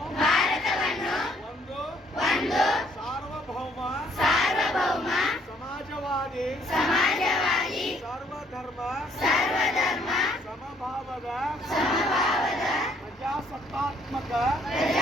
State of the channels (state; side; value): normal; both; correlation 0.65